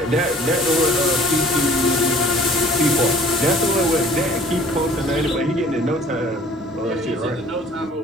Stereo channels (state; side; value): normal; both; correlation 0.53